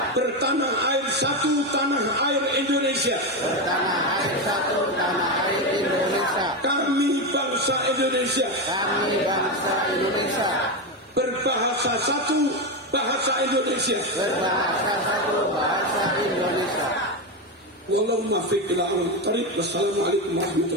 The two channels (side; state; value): both; normal; correlation 0.12